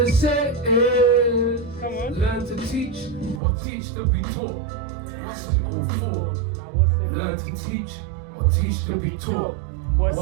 say is, learn to teach or teach to be taught. What's it all for? Learn to teach or teach to be taught.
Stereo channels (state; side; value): drops out; left; at 3.4 s